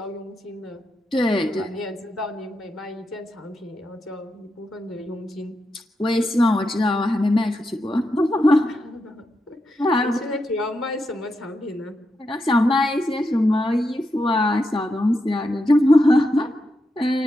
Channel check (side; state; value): both; normal; correlation 0.85